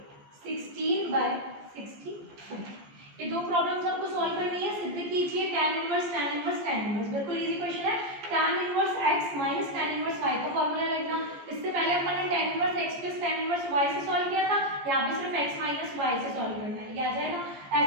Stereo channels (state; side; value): late; left; 14 ms